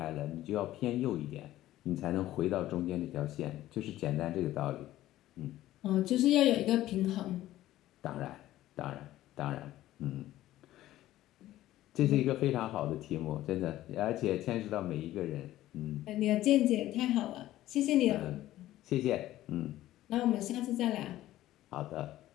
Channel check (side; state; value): right; quieter; 14.7 dB